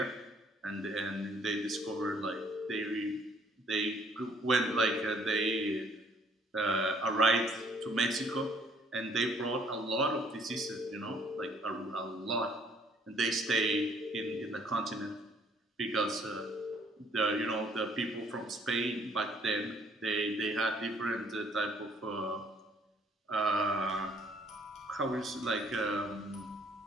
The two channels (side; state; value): both; normal; correlation 0.62